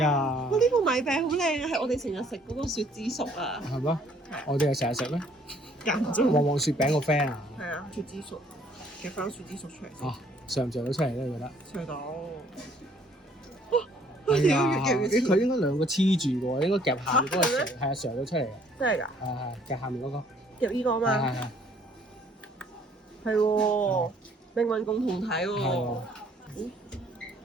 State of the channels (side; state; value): both; normal; correlation 0.61